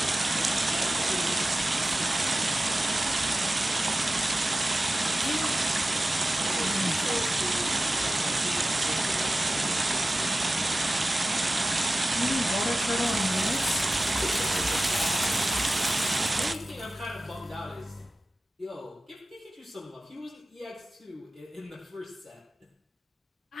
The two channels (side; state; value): both; normal; correlation 0.94